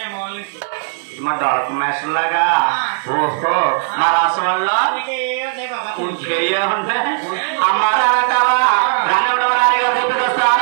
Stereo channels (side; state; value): left; silent; 68 dB below the other